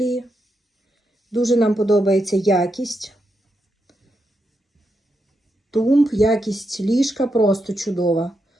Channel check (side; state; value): both; normal; correlation 0.84